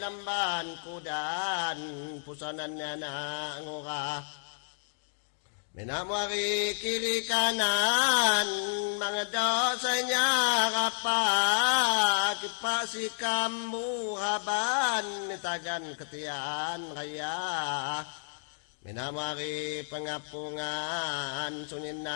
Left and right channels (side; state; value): right; silent; digital silence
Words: lamban kudan pusanannya na ngurah. Minamwari kiri kanan mga dosanya kapak kipasikam buhaban nitagan ketian raya. Minamwari pengapungan sunin